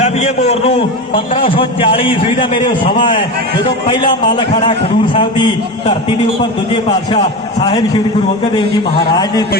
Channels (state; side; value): normal; both; correlation 0.23